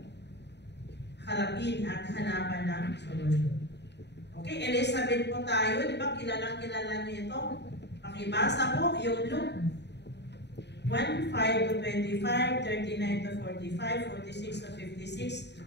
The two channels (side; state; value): right; late; 0.50 ms